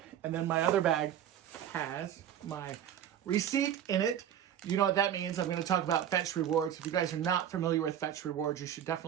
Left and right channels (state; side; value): quieter; left; 10.1 dB